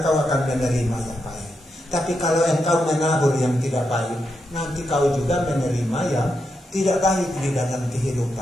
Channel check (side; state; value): both; normal; correlation 0.84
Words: akan menerima yang baik. Tapi kalau engkau menabur yang tidak baik, nanti kau juga menerima yang tidak baik di dalam